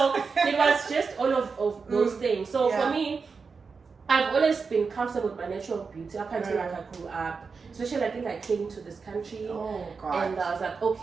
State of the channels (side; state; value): left; quieter; 5.0 dB